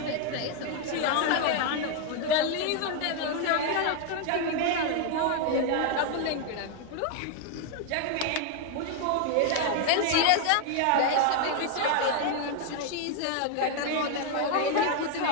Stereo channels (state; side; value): different; both; correlation 0.01